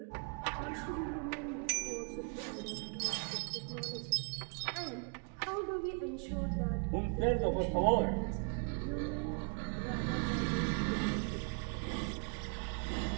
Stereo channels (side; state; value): left; quieter; 38.9 dB